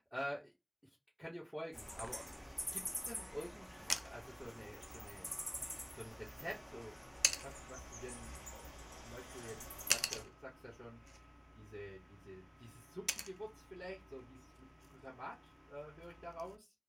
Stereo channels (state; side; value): identical; both; correlation 1.00